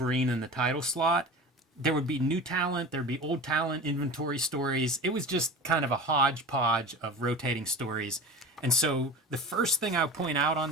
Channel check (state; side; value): normal; both; correlation 0.33